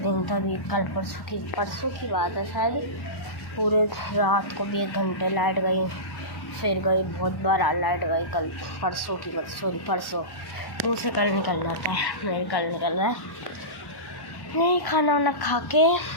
दिन तभी कल परसों की बात है शायद, पूरे रात को भी 1 घंटे लाइट गई, फिर गई, बहुत बार लाइट गई। कल परसों की बात, सॉरी परसों, मुँह से कल निकल जाता है, मेरे कल निकल रहा है। नहीं, खाना वाना खा के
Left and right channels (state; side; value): late; right; 1.1 ms